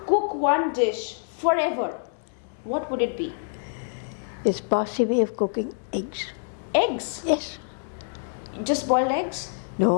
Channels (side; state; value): right; silent; digital silence